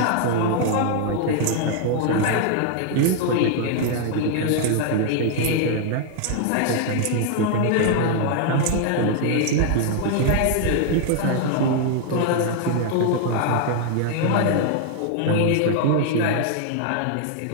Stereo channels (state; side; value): different; both; correlation 0.00